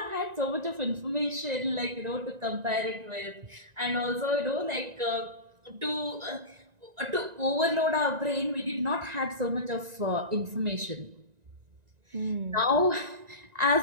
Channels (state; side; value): late; left; 1.9 ms